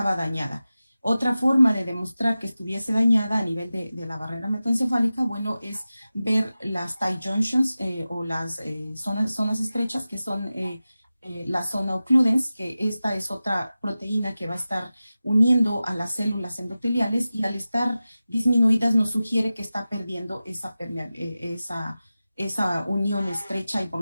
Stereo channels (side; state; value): both; inverted; correlation -0.95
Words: dañada. Otra forma de demostrar que estuviese dañada a nivel de la barrera hematoencefálica, bueno, es ver las tight junctions o las zonas estrechas, que son la zona occludens, que esta es otra proteína que va a estar uniendo a las células endoteliales y al estar disminuidas nos sugiere que está perdiendo esa unión estrecha y por